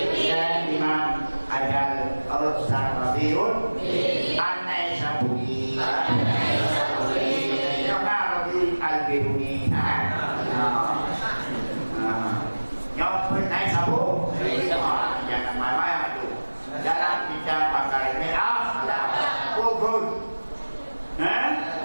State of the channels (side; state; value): both; inverted; correlation -1.00